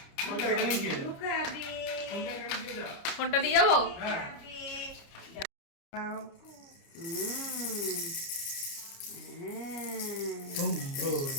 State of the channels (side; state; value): right; late; 29 ms